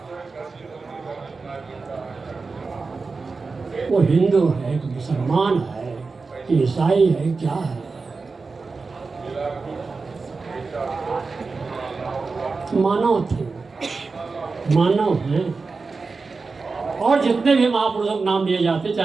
वो हिंदू है कि मुसलमान है कि ईसाई है, क्या है? मानव थे, मानव हैं। और जितने भी महापुरुषों के नाम लिए जाते,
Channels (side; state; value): left; quieter; 4.3 dB